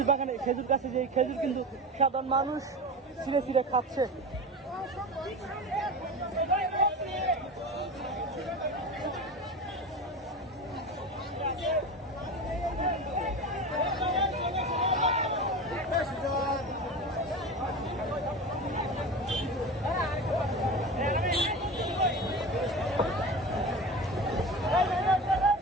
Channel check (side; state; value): both; normal; correlation 0.28